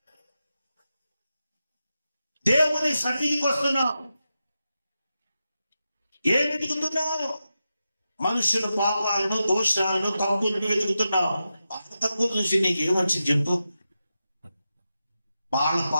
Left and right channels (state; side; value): inverted; both; correlation -0.90